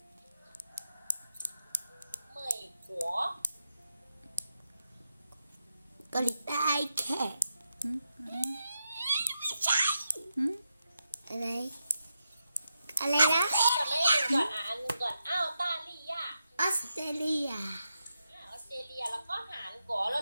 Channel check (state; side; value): inverted; both; correlation -0.85